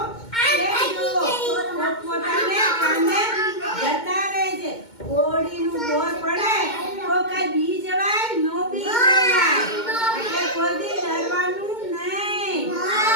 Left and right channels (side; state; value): right; late; 2.2 ms